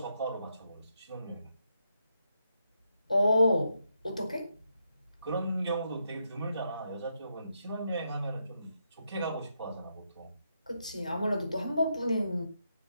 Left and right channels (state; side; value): inverted; both; correlation -0.81